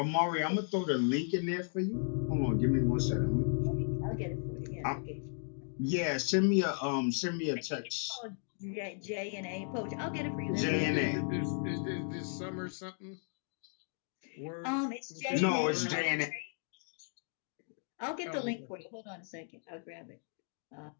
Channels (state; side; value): silent; right; 54 dB below the other